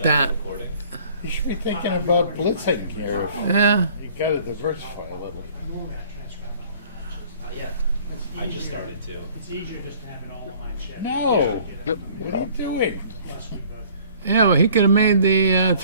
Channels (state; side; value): inverted; both; correlation -0.53